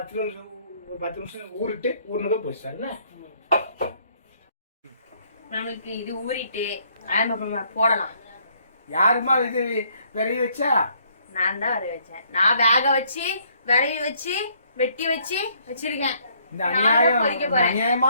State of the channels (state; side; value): inverted; both; correlation -0.66